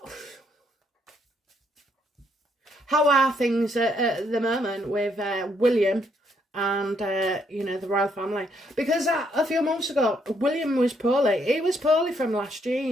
how are things at the moment with William and, you know, the royal family? Because a few months ago, William was poorly. He was poorly from last year,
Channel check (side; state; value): both; normal; correlation 0.72